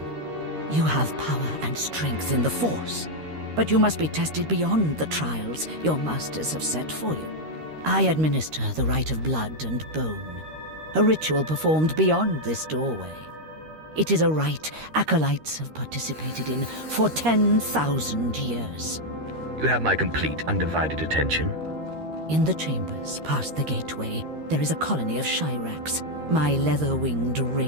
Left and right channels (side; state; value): left; late; 13 ms